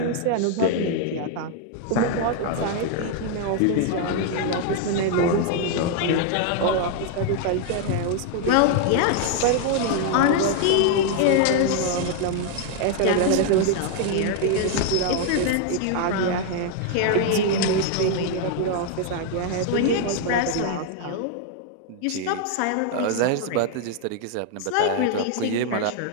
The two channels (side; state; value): both; different; correlation 0.00